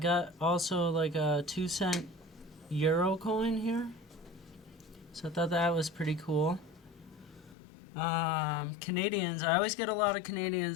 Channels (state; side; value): drops out; right; at 7.6 s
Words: also like a 2-cent euro coin here. So I thought that was pretty cool. Canadians. I always get a lot of